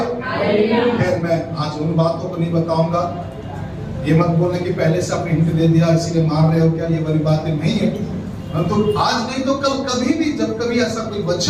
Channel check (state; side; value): identical; both; correlation 1.00